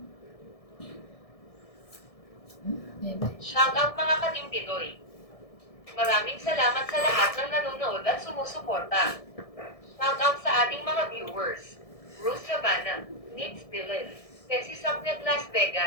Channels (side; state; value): right; late; 1.6 ms